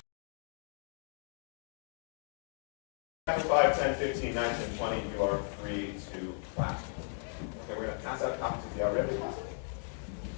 Chapter 5, 10, 15, 19, 20, you are free to class. Okay, we're going to pass out copies of the already.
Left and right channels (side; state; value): right; silent; 54 dB below the other